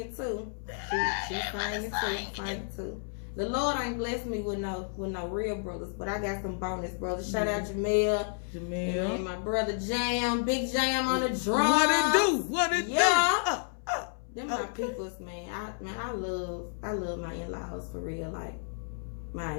too. She's singing too. The Lord ain't blessed me with no real brothers, but I got some bonus brothers. Shout out Jamel. And my brother Jam, Big Jam on the drums. What it do? Yeah. Them my peoples, man. I love my in-laws for real. Like,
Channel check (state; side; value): silent; right; 57 dB below the other